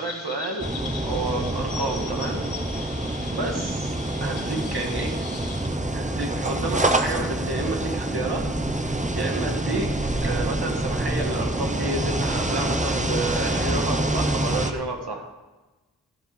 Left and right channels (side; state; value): both; normal; correlation 0.52